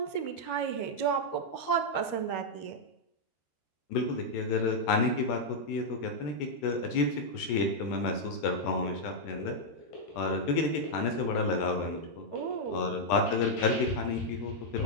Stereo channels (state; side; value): late; right; 14 ms